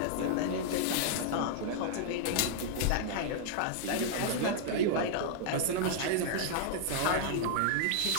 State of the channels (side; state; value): both; different; correlation -0.01